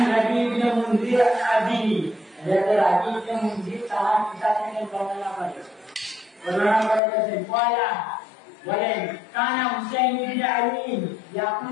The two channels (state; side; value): drops out; right; at 7.0 s